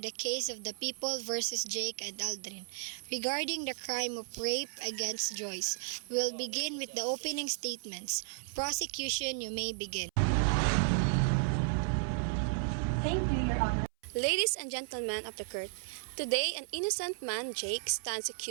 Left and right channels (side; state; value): left; silent; 55 dB below the other